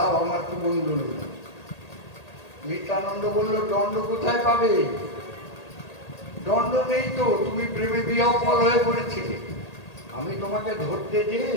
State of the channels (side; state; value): right; late; 1.8 ms